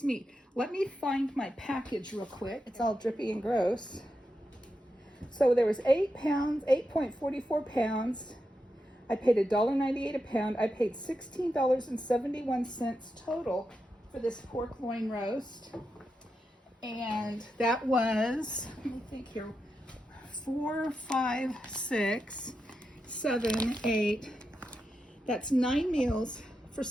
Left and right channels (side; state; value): both; normal; correlation 0.87